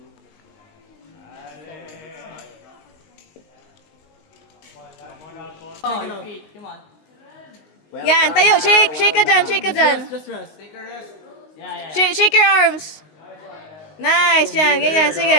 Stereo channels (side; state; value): right; late; 19 ms